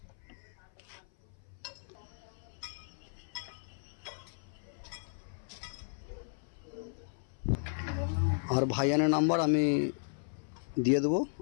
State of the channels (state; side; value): silent; right; 54 dB below the other